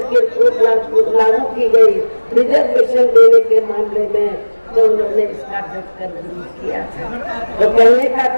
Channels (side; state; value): both; inverted; correlation -1.00